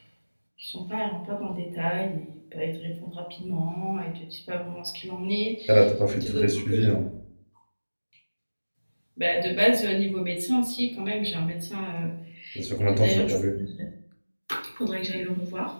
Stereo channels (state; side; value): inverted; both; correlation -1.00